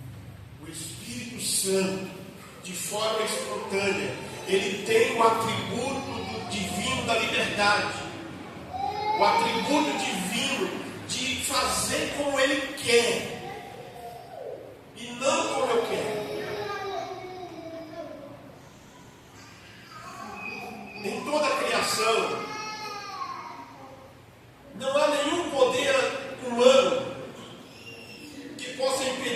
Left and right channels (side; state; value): both; identical; correlation 1.00